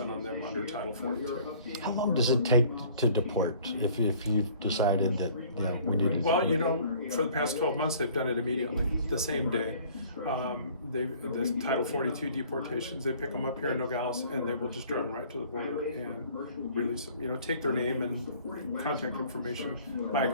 on them under Title 42. How long does it take to deport if you've decided that we need to? Well, for the past 12 months, they've done it immediately, the same day. The Title 42 deportations, they pick them up here in Nogales and they will just drive them right to the border and release them. Take their name and contact information,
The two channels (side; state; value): both; inverted; correlation -0.53